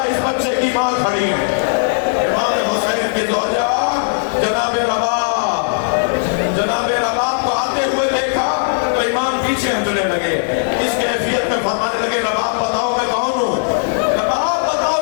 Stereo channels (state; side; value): silent; right; digital silence